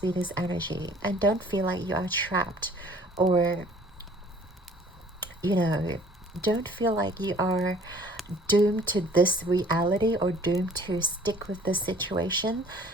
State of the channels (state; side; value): normal; both; correlation 0.53